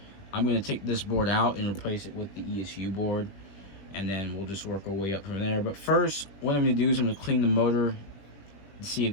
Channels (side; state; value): right; late; 20 ms